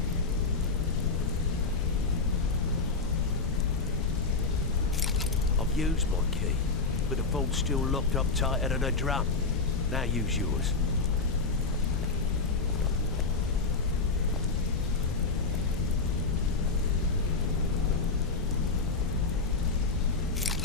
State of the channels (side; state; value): right; quieter; 4.1 dB